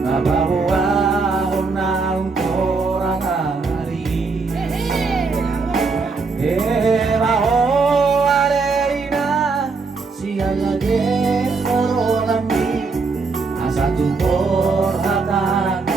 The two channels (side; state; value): left; quieter; 4.3 dB